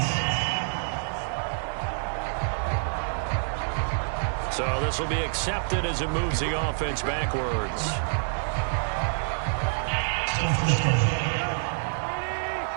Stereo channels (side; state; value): left; silent; 59 dB below the other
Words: So this will be accepted as it moves the offense backwards.